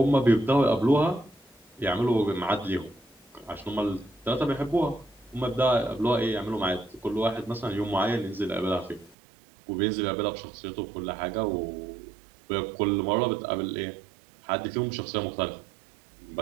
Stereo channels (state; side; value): drops out; left; at 9.2 s